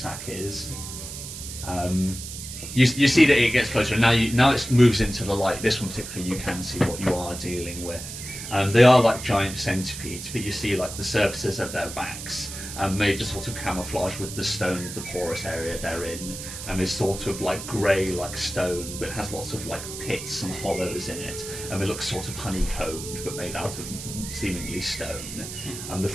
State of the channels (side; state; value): right; noise; hiss, 9 dB below the sound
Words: is. You see that it gets closer. Now it moves into the light. This one particularly, you can see what you are dealing with. They are like giant centipedes, but you see like the surfaces of their backs made to sort of camouflage with the stone of the porous area they're in, and is sort of like grey like stone, but it has lots of like pits and hollows in it, and it looks sort of honeycombed, but made out of seemingly stone. The